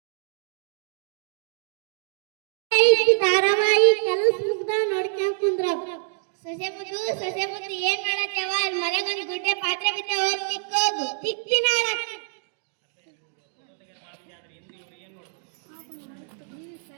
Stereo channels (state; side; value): silent; left; digital silence